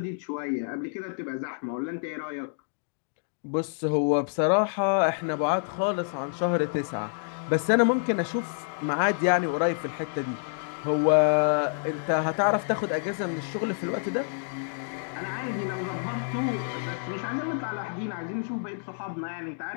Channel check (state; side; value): silent; right; digital silence